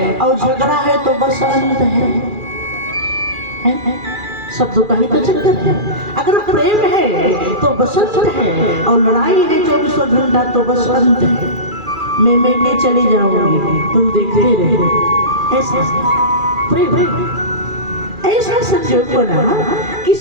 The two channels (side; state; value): left; late; 2.4 ms